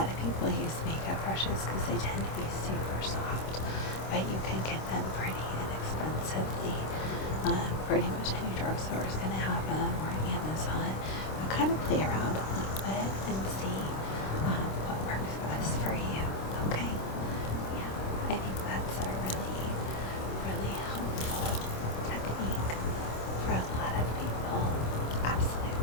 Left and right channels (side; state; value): right; late; 26 ms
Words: of people use makeup brushes because they tend to be super soft, but you can get them pretty inexpensively. Pretty much any drugstore is going to have them, or Amazon. But kind of play around a little bit and see what works best for you. Okay? Yeah, I think that's a really, really helpful technique for a lot of people.